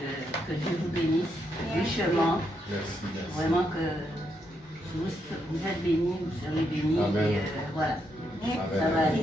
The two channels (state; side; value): normal; both; correlation 0.79